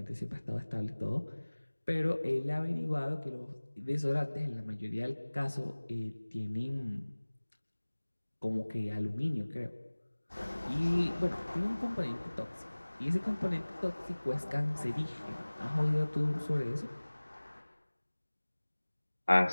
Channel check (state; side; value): inverted; both; correlation -1.00